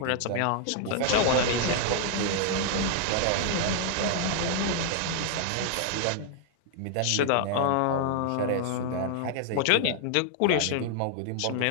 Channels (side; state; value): both; different; correlation -0.01